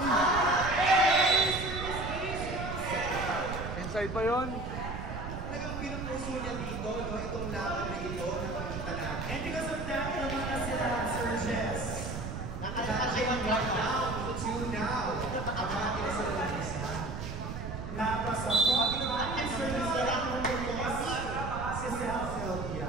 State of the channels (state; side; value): noise; right; rumble, 6 dB below the sound